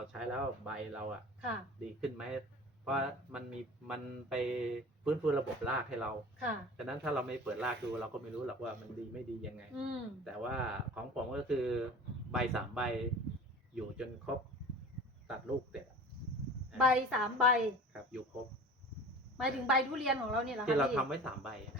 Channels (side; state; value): both; normal; correlation 0.39